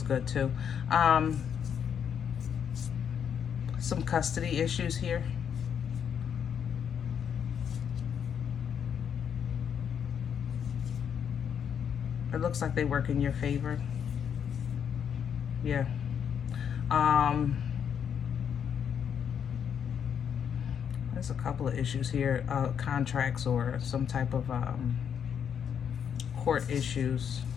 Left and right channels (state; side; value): quieter; right; 8.0 dB